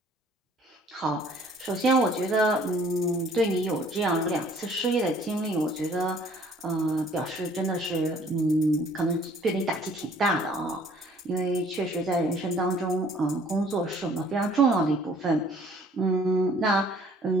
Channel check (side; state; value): both; normal; correlation 0.57